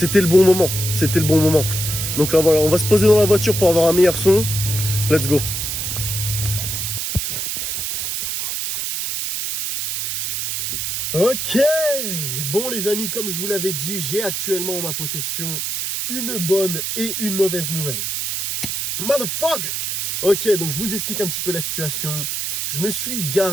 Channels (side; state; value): right; noise; hiss, 2 dB below the sound